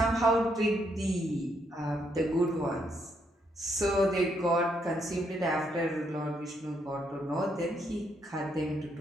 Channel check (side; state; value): both; normal; correlation 0.75